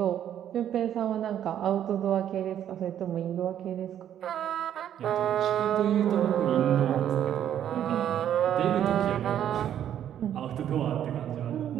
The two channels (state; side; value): quieter; left; 10.3 dB